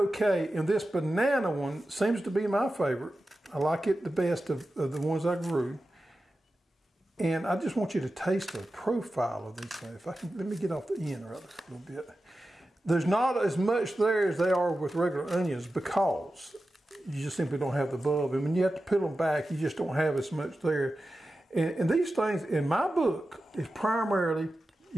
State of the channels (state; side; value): normal; both; correlation 0.93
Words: And this banana one seems to be my favorite. I like it the best of the ones I grew. And I just want you to taste the profile of these things. If I can, let me get off the end rather a little bit. There's not as much there as they are with regular onions because you just simply don't have the bulb. And when you have to peel them back, you just don't have as much there. And these things, in my book, is primarily